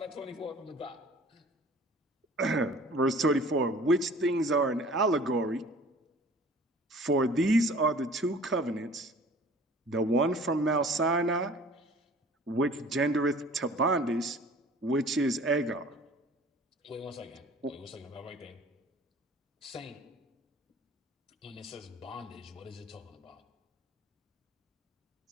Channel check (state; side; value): normal; both; correlation 0.48